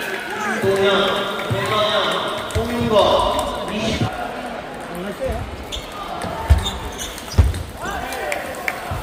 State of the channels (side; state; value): both; identical; correlation 1.00